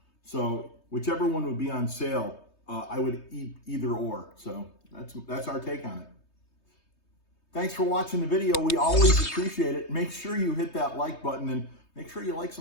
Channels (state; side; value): late; right; 3.2 ms